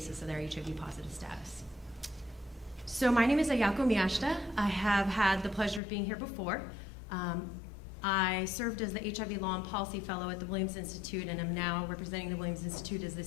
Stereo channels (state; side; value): drops out; right; at 5.8 s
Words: of their HIV-positive status. So my name is Ayako Miyashita. I have had the pleasure of being here before. I served as the HIV Law and Policy Fellow at the Williams Institute and am now representing the Williams Institute as